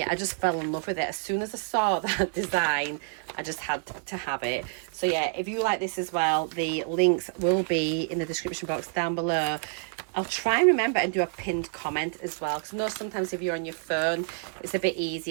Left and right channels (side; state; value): left; silent; digital silence